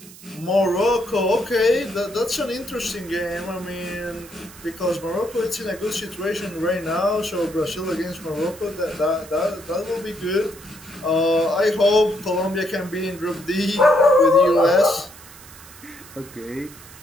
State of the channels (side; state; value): right; noise; hiss, 19 dB below the sound